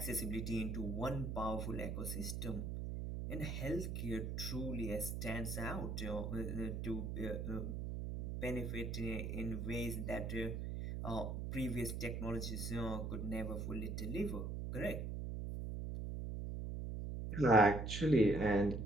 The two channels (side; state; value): right; noise; hum, 3 dB below the sound